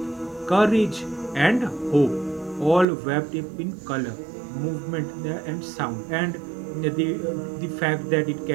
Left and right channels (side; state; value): left; drops out; at 2.9 s